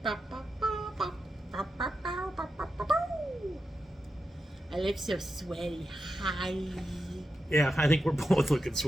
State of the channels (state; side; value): normal; both; correlation 0.89